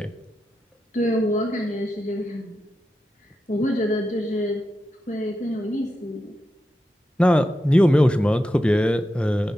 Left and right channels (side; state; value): both; normal; correlation 0.89